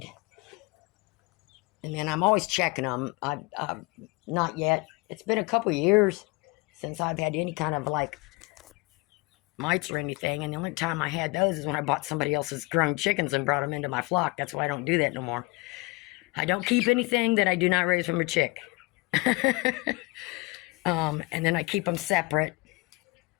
And then I'm always checking them. Not yet. It's been a couple years since I've had any kind of like mites or anything. And the only time I had those is when I bought somebody else's grown chickens and brought them into my flock. That's why I don't do that no more. I don't keep anything that I do not raise from a chick. And then I keep them separate.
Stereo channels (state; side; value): quieter; right; 25.1 dB